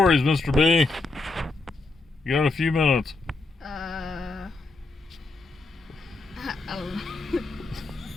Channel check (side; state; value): right; quieter; 3.5 dB